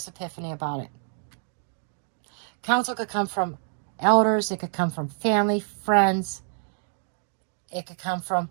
epiphany about it. Counsel could come from elders, it could come from family, friends, it could come from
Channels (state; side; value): silent; left; digital silence